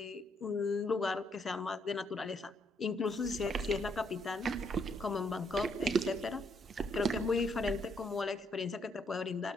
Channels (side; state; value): both; normal; correlation 0.72